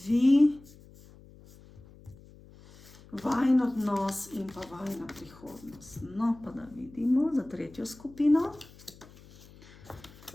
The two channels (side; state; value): left; noise; hum, 22 dB below the sound